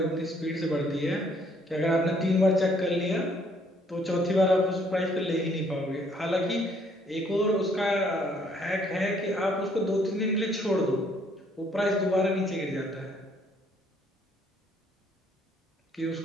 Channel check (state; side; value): normal; both; correlation 0.65